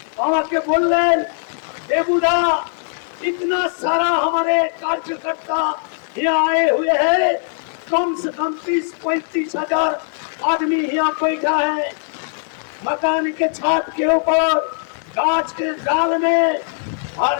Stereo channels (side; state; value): right; silent; digital silence